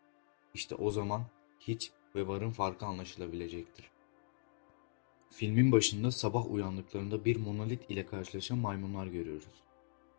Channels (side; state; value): right; silent; digital silence